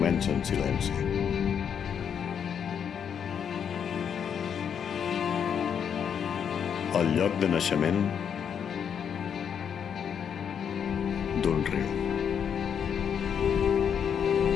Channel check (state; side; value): quieter; right; 7.8 dB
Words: en silenci. El lloc de naixement d'un riu.